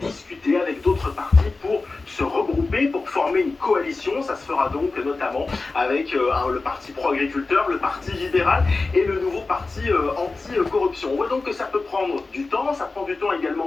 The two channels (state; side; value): quieter; right; 3.7 dB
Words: discuter avec d'autres partis pour se regrouper, pour former une coalition. Ça se fera donc notamment avec le parti pro-agriculteur, le parti libéral et le nouveau parti anti-corruption. On voit donc que ça peut prendre du temps, ça prend du temps